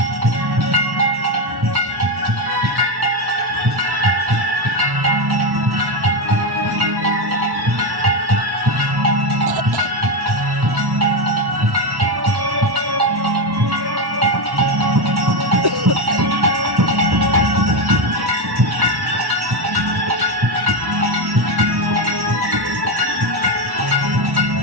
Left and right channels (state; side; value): late; left; 1.1 ms